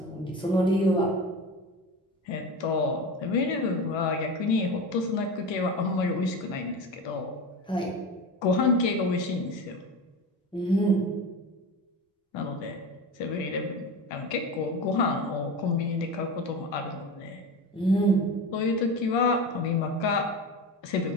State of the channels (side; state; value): both; normal; correlation 0.27